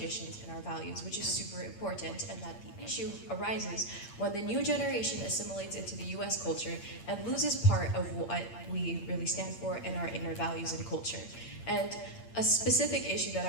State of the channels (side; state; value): right; late; 8.7 ms